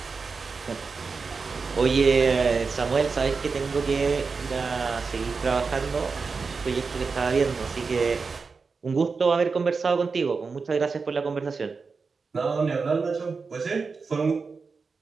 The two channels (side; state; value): left; quieter; 4.8 dB